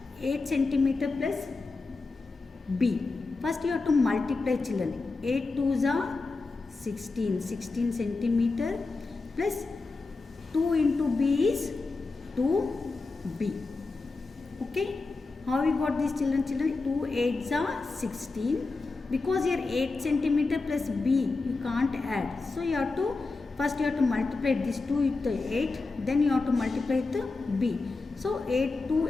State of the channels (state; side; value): quieter; right; 3.8 dB